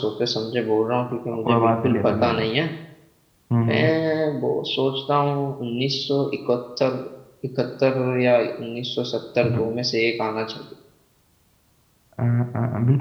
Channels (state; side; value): identical; both; correlation 1.00